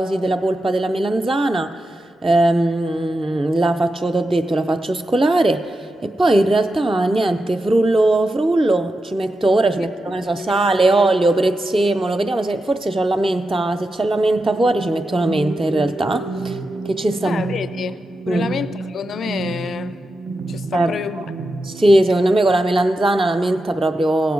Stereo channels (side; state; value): both; normal; correlation 0.89